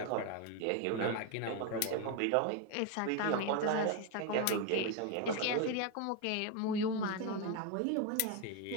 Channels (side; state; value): both; different; correlation 0.02